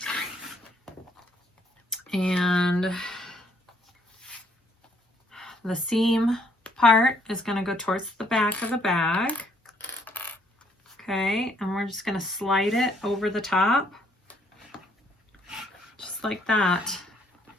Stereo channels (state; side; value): normal; both; correlation 0.67